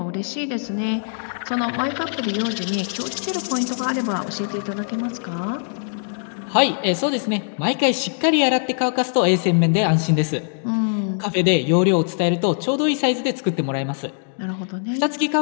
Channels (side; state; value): right; silent; digital silence